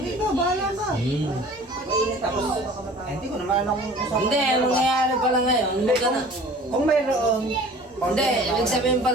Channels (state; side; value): normal; both; correlation 0.46